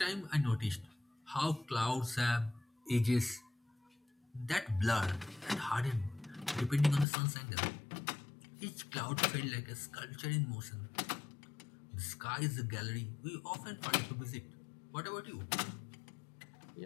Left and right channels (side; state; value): right; drops out; at 7.1 s